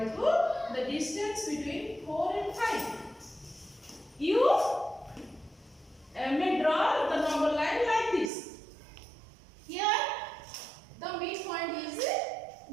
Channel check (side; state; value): left; drops out; at 8.3 s